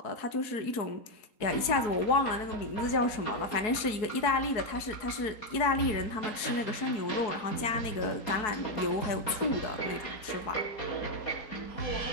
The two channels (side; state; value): right; late; 4.6 ms